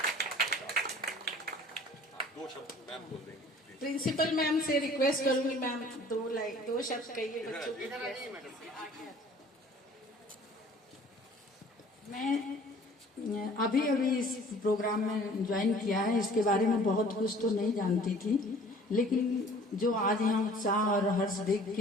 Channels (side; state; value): both; normal; correlation 0.50